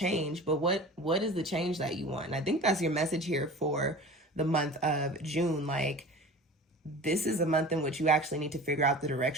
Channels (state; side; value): normal; both; correlation 0.38